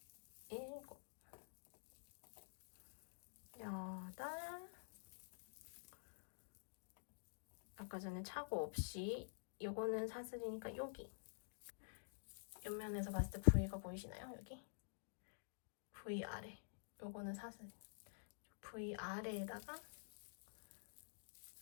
일곱, 여덟, 아까 전에 착오 없이 요거는 사슬이니까 여기 옆면에서 봤을 때 V가 보이시나요? 여기 V 아래 요거는 사슬 V 아래에다가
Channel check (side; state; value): right; silent; digital silence